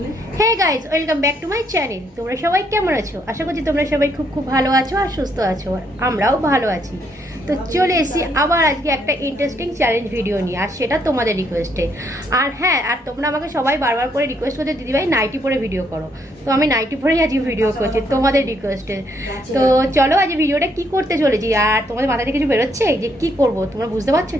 Hey guys, welcome back to my channel. তোমরা সবাই কেমন আছো? আশা করছি তোমরা সবাই খুব খুব ভালো আছো আর সুস্থ আছো, আর আমরাও ভালো আছি। তো চলে এসেছি আবার আজকে একটা ইন্টারেস্টিং চ্যালেঞ্জ ভিডিও নিয়ে, আর সেটা তোমাদের রিকোয়েস্টে। আর হ্যাঁ, আর তোমরা আমাকে সবাই বারবার করে রিকোয়েস্ট করতে, দিদিভাই নাইটি পরে ভিডিও করো। তো আমি নাইটি পরেই আজকে ভিডিও করছি তোমাদের রিকোয়েস্টে। তো চলো আজ ভিডিওটা কি করতে চলেছি, আর তোমাদের মাথায় কিছু বেরোচ্ছে যে কি করব? তোমরা বুঝতে পারছো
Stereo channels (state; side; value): normal; both; correlation 0.72